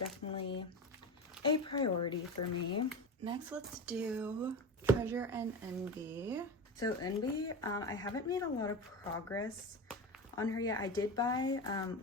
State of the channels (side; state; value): both; normal; correlation 0.25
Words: a priority for me. Next, let's do Treasure and Eunbi. So Eunbi, I haven't made a lot of progress on her yet. I did buy